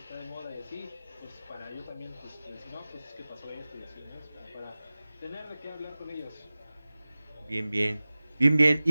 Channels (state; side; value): inverted; both; correlation -0.98